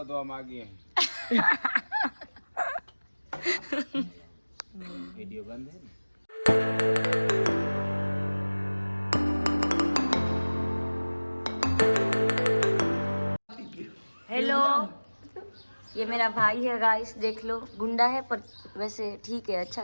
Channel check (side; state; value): both; inverted; correlation -1.00